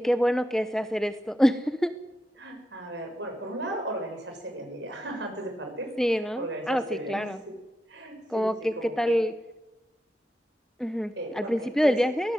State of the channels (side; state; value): both; normal; correlation 0.87